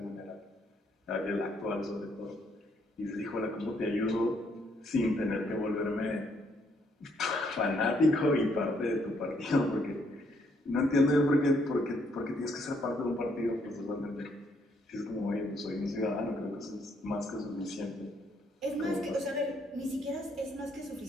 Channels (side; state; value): both; normal; correlation 0.71